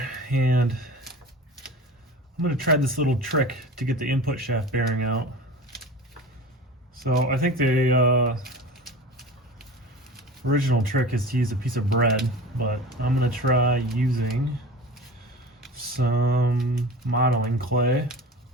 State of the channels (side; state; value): both; normal; correlation 0.35